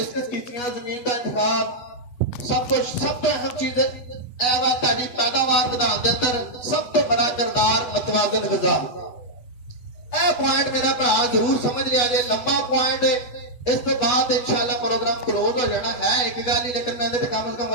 ਕੀਤੀਆਂ, ਜ਼ਮੀਨ ਦਾ ਇੰਤਖਾਬ, ਸਭ ਤੋਂ ਅਹਿਮ ਚੀਜ਼ ਇਹ ਵਾ ਤੁਹਾਡੀ ਪੈਦਾਵਾਰ ਵਧਾਉਣ ਦੇ ਅੰਦਰ ਸਭ ਤੋਂ ਬੜਾ ਕਿਰਦਾਰ ਮਤਵਾਜ਼ਨ ਗ਼ਜ਼ਾ। ਇਹ ਪੁਆਇੰਟ ਮੇਰਾ ਭਰਾ ਜ਼ਰੂਰ ਸਮਝ ਲਿਆ ਜੇ, ਲੰਬਾ ਪੁਆਇੰਟ। ਇਸ ਤੋਂ ਬਾਅਦ ਇਨਸ਼ਾਅੱਲਾ ਪ੍ਰੋਗਰਾਮ ਕਲੋਜ਼ ਹੋ ਜਾਣਾ ਹੈ, ਇੱਕ ਗੱਲ ਹੀ, ਲੇਕਿਨ ਮੈਂ ਇਹਦੇ ਤੇ ਕਮ ਸੇ ਕਮ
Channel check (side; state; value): right; late; 8.2 ms